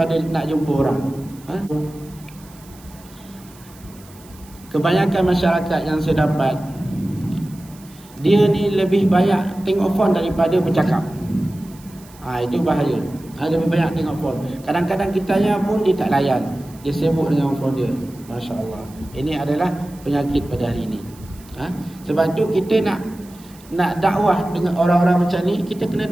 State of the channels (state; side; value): noise; right; hiss, 24 dB below the sound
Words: nak jumpa orang. Kebanyakan masyarakat yang saya dapat, dia ni lebih banyak tengok phone daripada bercakap. Itu bahaya. Lebih banyak tengok phone. Kadang-kadang kitanya pun dia tak layan. Dia sibuk dengan phone dia. Masya Allah. Ini adalah penyakit pada hari ini. Sebab tu kita nak dakwah dengan orang-orang macam ni, kita kena